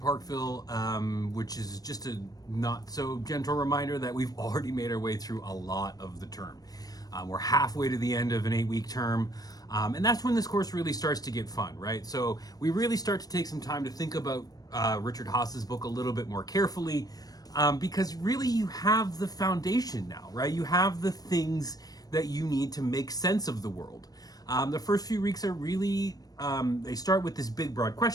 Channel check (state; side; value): late; right; 0.18 ms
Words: which is just a not so gentle reminder that we've already made our way through a lot of the term. We're halfway to the end of an 8-week term, and that's when this course really starts to get fun, right? So we really start to take some time to think about Richard Haas's book a little bit more carefully, because really you have the foundation now, right? You have the things that you need to make sense of the world. The first few weeks are really, they start with this big broad